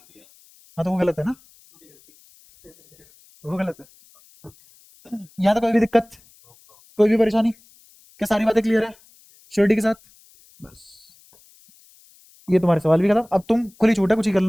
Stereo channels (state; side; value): noise; left; hiss, 29 dB below the sound